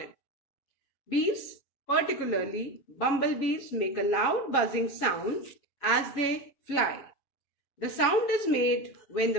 Bees, particularly bumblebees, make a loud buzzing sound as they fly. The sound is made when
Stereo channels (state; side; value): late; right; 7.3 ms